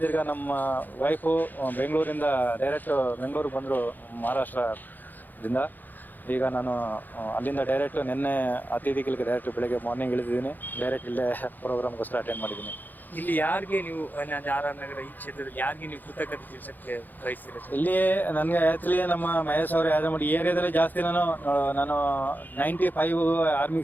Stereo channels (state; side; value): late; right; 0.086 ms